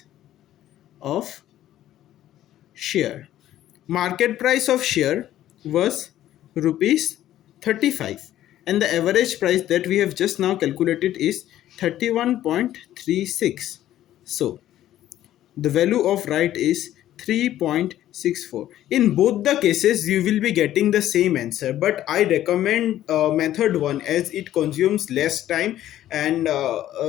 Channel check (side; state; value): right; quieter; 12.8 dB